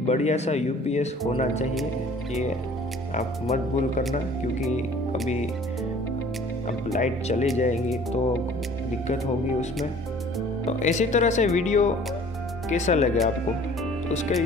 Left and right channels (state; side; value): normal; both; correlation 0.51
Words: बढ़िया सा UPS होना चाहिए, ये आप मत भूल करना, क्योंकि अभी अब लाइट चली जाएगी तो दिक्कत होगी उसमें। तो इसी तरह से वीडियो कैसा लगे आपको, तो उसके